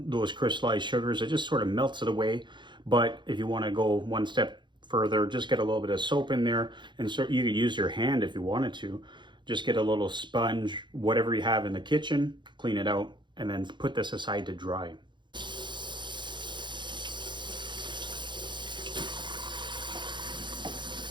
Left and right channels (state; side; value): late; left; 0.23 ms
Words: crystallized sugars. It just sort of melts it away. But if you want to go one step further, just get a little bit of soap in there, and so you could use your hand if you wanted to. Just get a little sponge, whatever you have in the kitchen, clean it out, and then put this aside to dry.